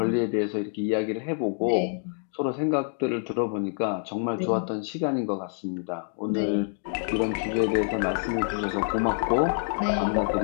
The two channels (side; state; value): right; silent; 56 dB below the other